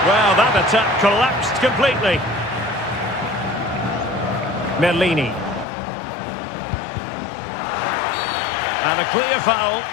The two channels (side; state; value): right; drops out; at 5.7 s